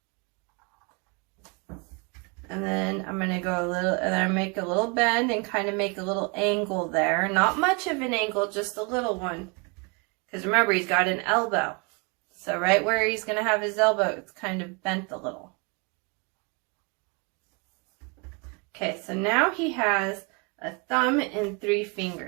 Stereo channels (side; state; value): left; quieter; 31.2 dB